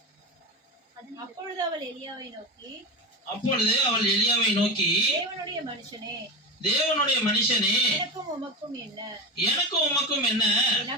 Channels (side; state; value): both; normal; correlation 0.19